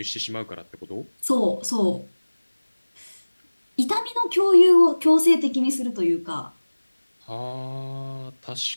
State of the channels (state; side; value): inverted; both; correlation -1.00